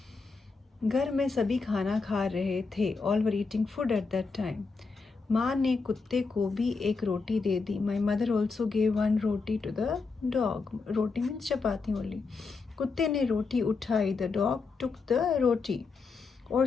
घर में सभी खाना खा रहे थे. All were eating food at that time. माँ ने कुत्ते को भी एक रोटी दे दी. My mother also gave one roti to the dog. Roti means chapati only. कुत्ते ने रोटी उठाई. The dog took the roti और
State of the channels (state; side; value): quieter; right; 4.4 dB